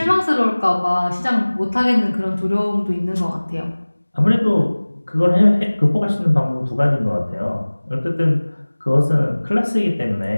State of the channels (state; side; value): inverted; both; correlation -1.00